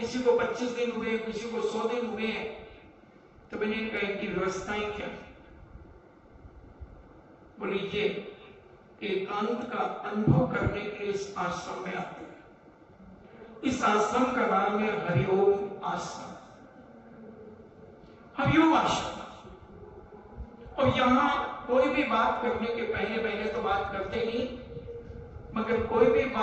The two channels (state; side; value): identical; both; correlation 1.00